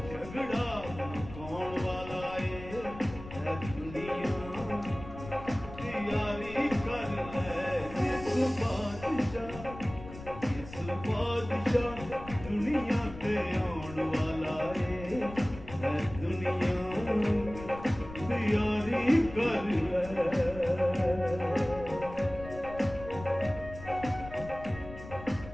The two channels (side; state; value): left; noise; rumble, 14 dB below the sound